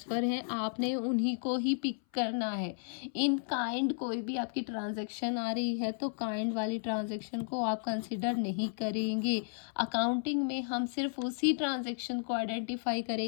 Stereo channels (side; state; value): right; silent; 56 dB below the other